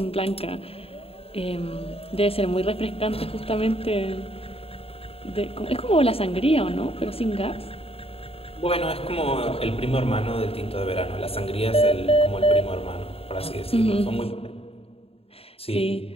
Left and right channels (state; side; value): late; right; 0.28 ms